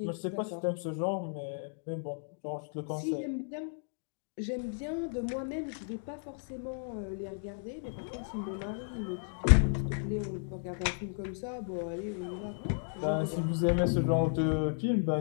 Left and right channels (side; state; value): right; silent; digital silence